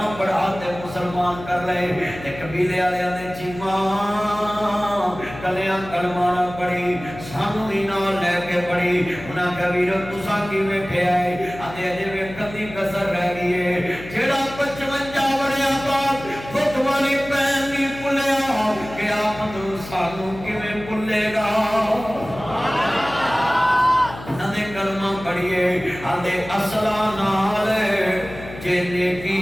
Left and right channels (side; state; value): left; noise; hum, 14 dB below the sound